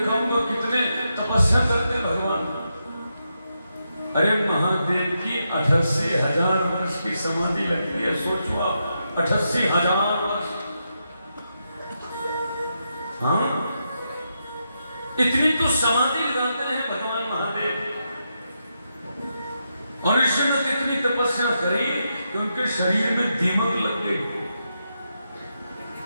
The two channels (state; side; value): inverted; both; correlation -0.85